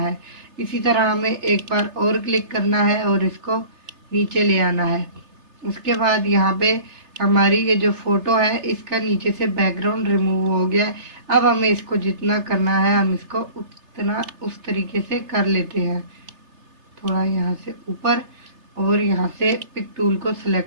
इसी तरह हमें एक बार और क्लिक करना है और इसको नीचे ले आना है। उसके बाद यहाँ पे हमारी ये जो फ़ोटो है इसका नीचे से बैकग्राउंड रिमूव हो गया है। अब हमें इसको जितना करना है हम इसको उतना उस तरीके से कर लेते हैं, थोड़ा यहाँ से ऊपर और यहाँ से पिक टूल को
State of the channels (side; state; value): left; late; 3.3 ms